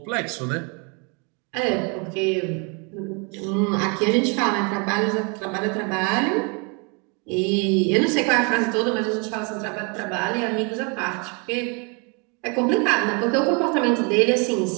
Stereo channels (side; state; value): left; quieter; 33.6 dB